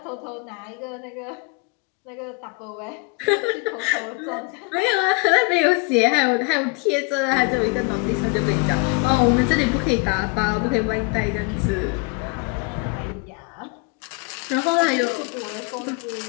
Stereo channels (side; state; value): right; quieter; 30.9 dB